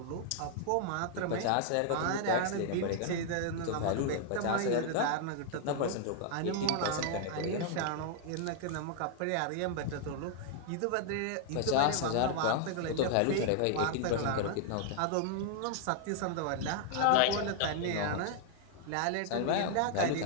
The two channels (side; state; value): both; different; correlation 0.00